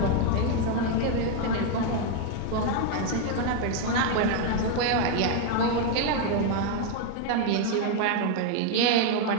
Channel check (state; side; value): different; both; correlation 0.01